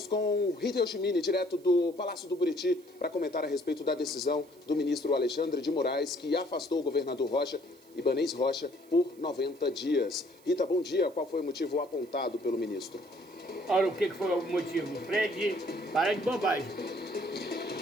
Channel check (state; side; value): noise; right; hiss, 28 dB below the sound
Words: com Rita Yoshimini, direto do Palácio do Buriti, para comentar a respeito da decisão do ministro Alexandre de Moraes, que afastou o governador Ibanez Rocha, por 90 dias. Rita, bom dia. Qual foi o motivo apontado pelo ministro? Olha, o que foi o motivo? Fred, para de bobagem.